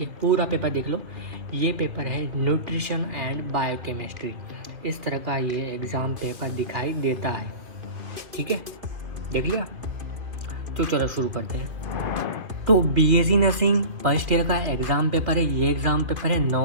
पूरा पेपर देख लो। ये पेपर है न्यूट्रिशन एंड बायोकेमिस्ट्री। इस तरह का ये एग्ज़ाम पेपर दिखाई देता है। ठीक है, देख लिया। तो चलो शुरू करते हैं। तो बीएससी नर्सिंग फर्स्ट ईयर का एग्ज़ाम पेपर है। ये एग्ज़ाम पेपर है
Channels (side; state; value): left; late; 2.7 ms